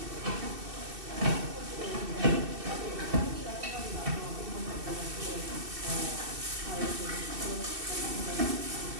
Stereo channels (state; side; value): late; left; 2.6 ms